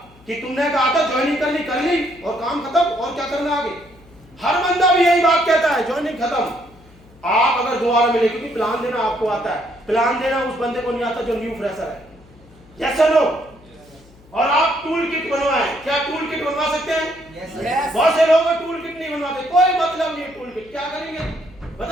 कि तुमने कहा था ज्वाइनिंग कर ली और काम खत्म, और क्या करना आगे। हर बंदा भी यही बात कहता है, ज्वाइनिंग खत्म। आप अगर दोबारा मिले, क्योंकि प्लान देना आपको आता है, प्लान देना उस बंदे को नहीं आता जो न्यू फ्रेशर है, यस और नो। और आप टूल किट बनवाएं, क्या टूल किट बनवा सकते हैं? yes. बहुत से लोग टूल किट नहीं बनवाते, कोई मतलब नहीं है टूल किट, क्या करेंगे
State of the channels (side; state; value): left; noise; hum, 26 dB below the sound